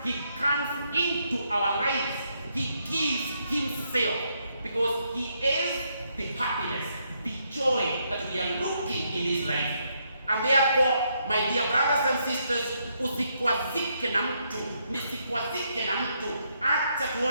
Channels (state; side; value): inverted; both; correlation -0.76